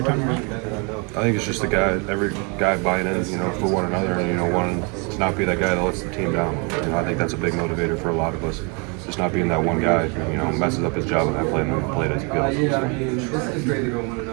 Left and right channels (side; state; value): left; quieter; 33.5 dB